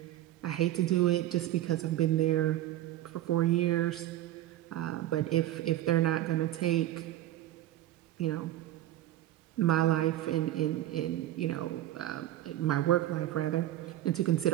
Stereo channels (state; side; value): quieter; left; 14.0 dB